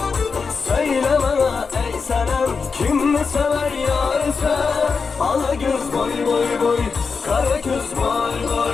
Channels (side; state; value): right; quieter; 5.1 dB